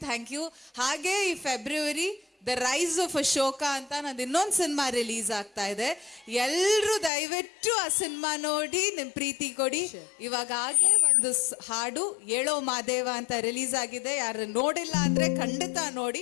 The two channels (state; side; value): drops out; right; at 7.1 s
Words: ಥ್ಯಾಂಕ್ ಯು. ಹಾಗೆ ಈ February the rise of Ashoka ಅಂತ ನಂದು ಇನ್ನೊಂದು ಸಿನಿಮಾ ರಿಲೀಸ್ ಆಗ್ತಾ ಇದೆ. ಎಲ್ಲರೂ ದಯವಿಟ್ಟು ಆ ಸಿನಿಮಾ ನೋಡಿ ನಿಮ್ಮ ಪ್ರೀತಿ ಕೊಡಿ. ಇವಾಗಲೇ ಒಂದು ಹಾಡು ಏಳೋ ಮಾದೇವ ಅಂತ ರಿಲೀಸ್ ಆಗಿದೆ, ಯಾರು ನೋಡಿಲ್ಲ ಅಂದರೆ ಖಂಡಿತ ನೋಡಿ,